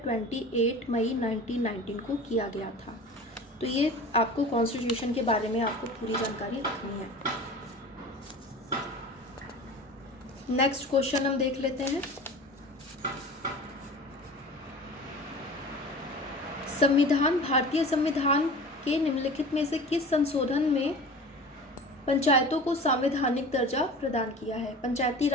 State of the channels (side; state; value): both; normal; correlation 0.37